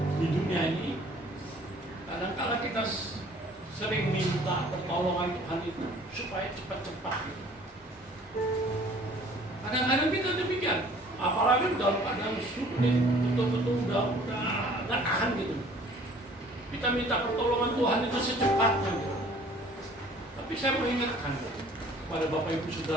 di dunia ini, kadang-kadang kita sering minta pertolongan Tuhan itu supaya cepat-cepat gitu. Kadang-kadang kita demikian, apalagi dalam keadaan sulit, betul-betul udah nggak tahan gitu. Kita minta pertolongan Tuhan itu secepatnya gitu. Tapi saya mengingatkan kepada Bapak Ibu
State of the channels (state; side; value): normal; both; correlation 0.53